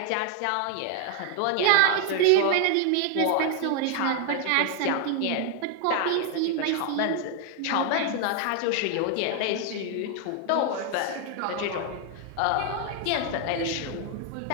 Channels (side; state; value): both; different; correlation 0.00